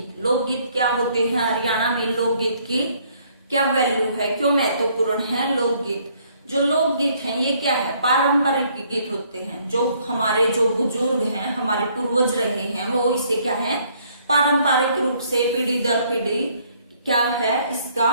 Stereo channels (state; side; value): inverted; both; correlation -0.65